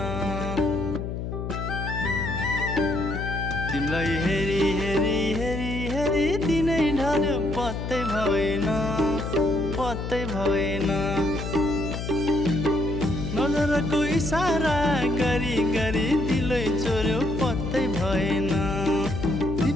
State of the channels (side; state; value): left; noise; hum, 5 dB below the sound